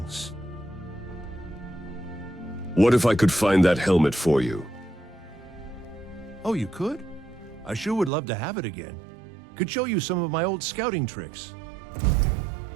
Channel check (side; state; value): left; drops out; at 8.1 s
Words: What if I could find that helmet for you? Oh, you could? I sure would love to have it again. Could show you some of my old scouting tricks.